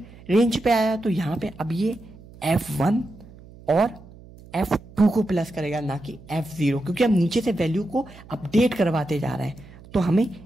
रेंज पे आया तो यहाँ पे अब ये F1 और F2 को प्लस करेगा, ना कि F0, क्योंकि हम नीचे से वैल्यू को अपडेट करवाते जा रहे हैं, तो हमें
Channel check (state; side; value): noise; right; hum, 21 dB below the sound